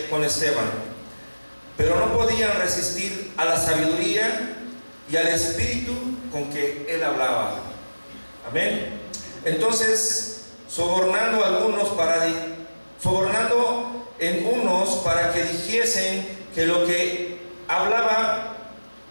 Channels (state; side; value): inverted; both; correlation -1.00